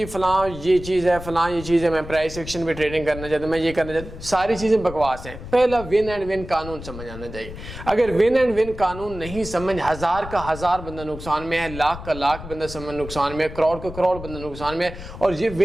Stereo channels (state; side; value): noise; left; rumble, 12 dB below the sound